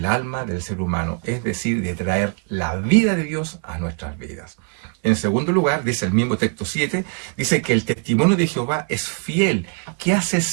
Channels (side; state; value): left; quieter; 37.5 dB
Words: alma del ser humano, es decir, de traer la vida de Dios a nuestras vidas. En segundo lugar, dice el mismo texto 7, dice que el testimonio de Jehová es fiel, que hace